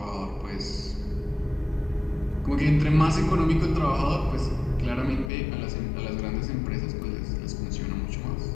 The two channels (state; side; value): drops out; right; at 5.3 s